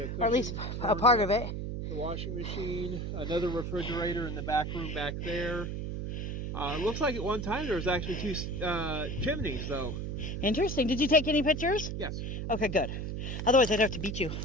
or at least cushions, a part of it. The washing machine, another refrigerator in the back room back there. It looks like at one time there was actually two chimneys, though. Interesting. Did you take any pictures? Yes. Okay, good. Otherwise, I'd have to beat you.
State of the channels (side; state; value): right; noise; hum, 4 dB below the sound